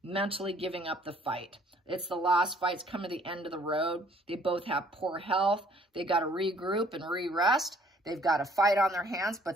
mentally giving up the fight. It's the lost fight. It's coming to the end of the road. They both have poor health. They got to regroup and re-rest. They've got a fight on their hands,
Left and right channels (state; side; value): normal; both; correlation 0.59